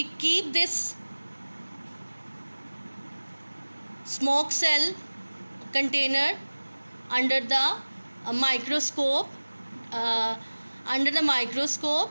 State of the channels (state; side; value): inverted; both; correlation -1.00